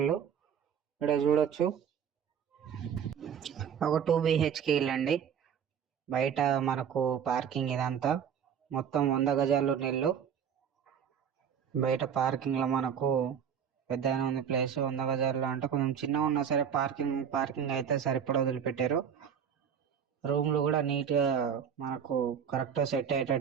ఇక్కడ చూడొచ్చు, ఒక 2 BHK ఇల్లు అండి. బయట మనకు పార్కింగ్ ఇదంతా మొత్తం 100 గజాలు ఉన్న ఇల్లు. బయట పార్కింగ్ లో మనకు పెద్ద ఉంది ప్లేస్. 100 గజాల్లో అంటే కొంచెం చిన్నగా ఉన్నా సరే పార్కింగ్ అయితే సరిపడా వదిలిపెట్టారు. రూమ్లు కూడా నీట్ గా మనకు కరెక్ట్ సెట్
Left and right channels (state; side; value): quieter; left; 7.9 dB